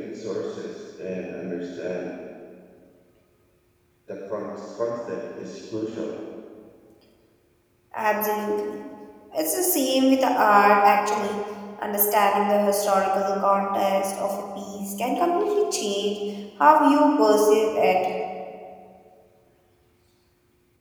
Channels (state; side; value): identical; both; correlation 1.00